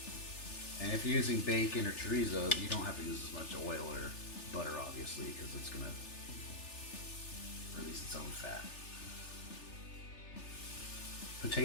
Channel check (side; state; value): right; late; 3.4 ms